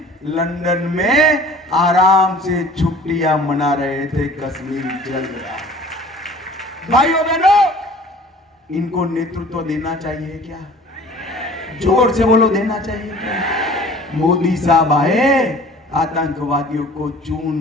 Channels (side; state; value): both; normal; correlation 0.47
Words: लंदन में आराम से छुट्टियां मना रहे थे, कश्मीर चल रहा। भाइयों बहनों, इनको नेतृत्व देना चाहिए क्या? जोर से बोलो, देना चाहिए क्या? मोदी साहब आए, आतंकवादियों को